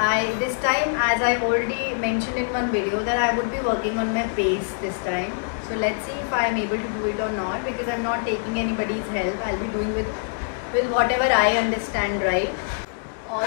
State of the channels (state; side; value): silent; right; 63 dB below the other